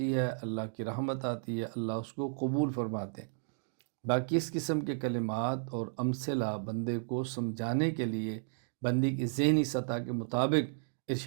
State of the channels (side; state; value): left; silent; digital silence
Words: ہے، اللہ کی رحمت آتی ہے، اللہ اس کو قبول فرماتے ہیں۔ باقی اس قسم کے کلمات اور امثلہ بندے کو سمجھانے کے لیے بندی کی ذہنی سطح کے مطابق